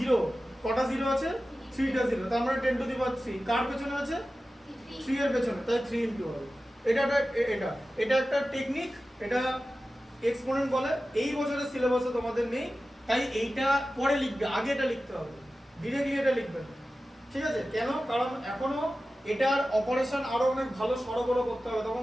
কটা জিরো আছে 3টা জিরো, তার মানে 10 টু দি পাওয়ার 3 কার পেছনে আছে 3 এর পেছনে, তাই 3 ইনটু হবে। এটা একটা টেকনিক, এটা এক্সপোনেন্ট বলে। এই বছরের সিলেবাসে তোমাদের নেই, তাই এইটা পরে লিখবে, আগে এটা লিখতে হবে, ডিরেক্টলি এটা লিখবে না। ঠিক আছে, কেন? কারণ এখনো এটার অপারেশন আরো অনেক ভালো সরগরম করতে হবে, তখন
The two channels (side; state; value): both; normal; correlation 0.94